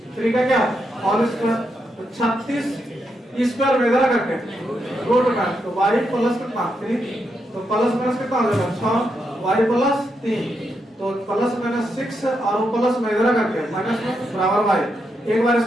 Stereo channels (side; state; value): both; normal; correlation 0.82